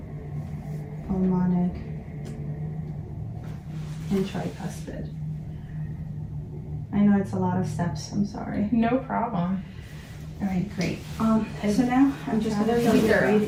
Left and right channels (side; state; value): both; identical; correlation 1.00